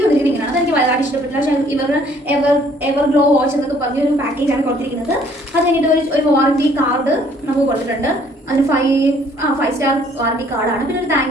വന്നിരിക്കുന്നത് ഇങ്ങനെയാണ്. അതെനിക്ക് വളരെ ഇഷ്ടപ്പെട്ടില്ല. പക്ഷേ എവർ ഗ്ലോ വാച്ച് എന്നൊക്കെ പറഞ്ഞൊരു പാക്കേജാണ് കൊടുത്തിരിക്കുന്നത്. അത് കഴിഞ്ഞിട്ട് ഒരു വാറണ്ടി കാർഡ് നമുക്ക് കൊടുത്തിട്ടുണ്ട്. അതിന് 5 സ്റ്റാർ വാറണ്ടി കാർഡാണ്. പിന്നെ ഒരു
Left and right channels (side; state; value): both; normal; correlation 0.61